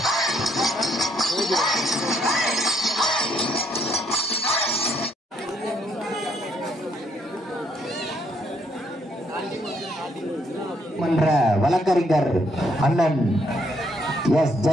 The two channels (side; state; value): both; normal; correlation 0.71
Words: மன்ற வழக்கறிஞர் அண்ணன் எஸ்